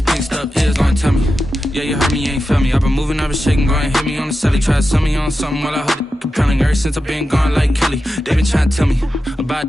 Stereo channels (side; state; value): both; normal; correlation 0.91